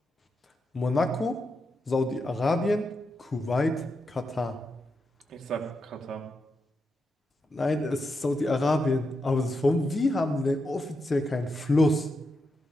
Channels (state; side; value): normal; both; correlation 0.85